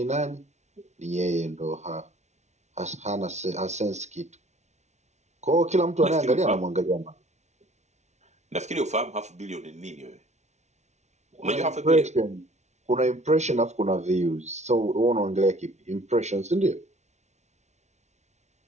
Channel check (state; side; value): late; left; 0.33 ms